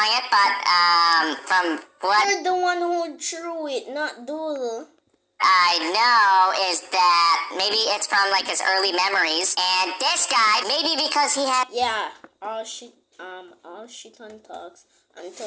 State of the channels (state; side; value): identical; both; correlation 1.00